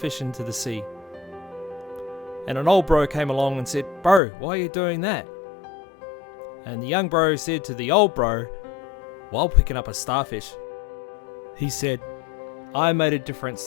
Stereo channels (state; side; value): drops out; right; at 4.2 s